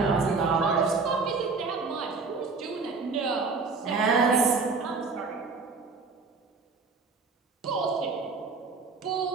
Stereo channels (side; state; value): left; quieter; 4.3 dB